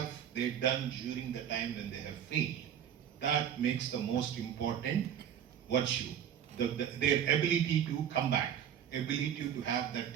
they done during the time when they have failed. That makes the most important virtue. Their ability to come back, ability to have that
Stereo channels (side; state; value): left; quieter; 9.4 dB